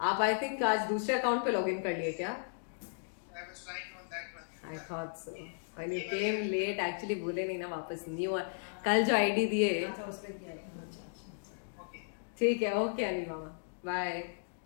I think आज दूसरे account पे login कर लिए क्या? I was trying on that one. I thought so. When you came late, actually बोले नहीं ना वापस न्यू कल जो आईडी दिए. ठीक है, ओके अनिल मामा. बाय.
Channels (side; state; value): right; silent; digital silence